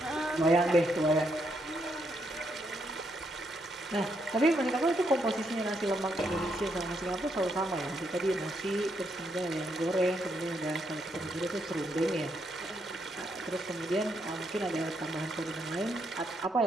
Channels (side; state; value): both; normal; correlation 0.77